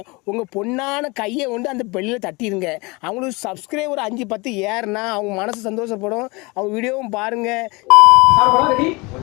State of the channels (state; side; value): quieter; right; 26.0 dB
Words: உங்கள் பொண்ணான கையை கொண்டு அந்த பெல்லில் தட்டிடுங்க. அவங்களுக்கு சப்ஸ்கிரைபர் 5-10 ஏறுனா அவங்க மனசு சந்தோஷப்படும். அவங்க வீடியோவும் பாருங்கள். சாப்பிடலாம். Ready